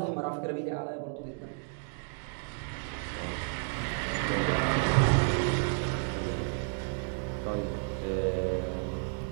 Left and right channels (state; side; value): silent; left; 57 dB below the other